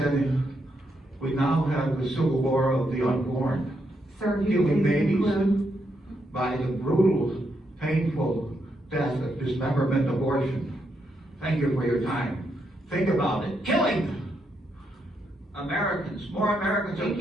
we now have the civil war of the unborn, killing babies by the brutal, painful death of dismemberment abortion. Thank you for your time. Think about it. Killing Americans. More Americans are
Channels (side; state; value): both; normal; correlation 0.80